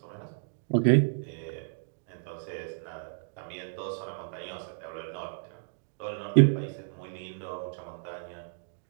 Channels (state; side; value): silent; left; digital silence